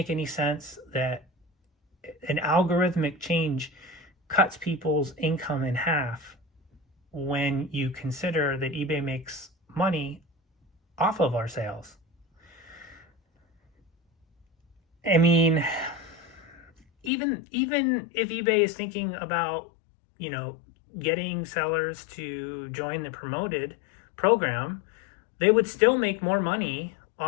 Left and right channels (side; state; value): right; drops out; at 17.1 s